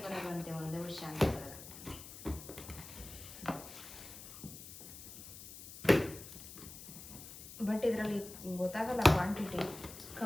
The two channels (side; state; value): left; noise; hiss, 13 dB below the sound